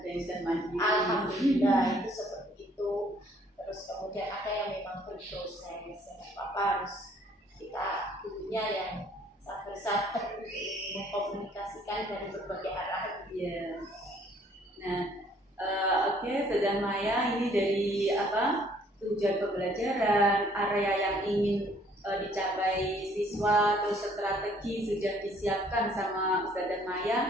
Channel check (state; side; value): normal; both; correlation 0.61